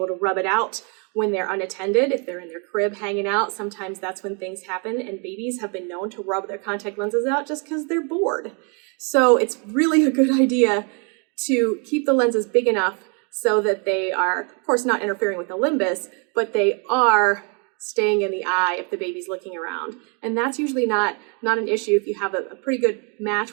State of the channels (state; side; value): quieter; left; 36.2 dB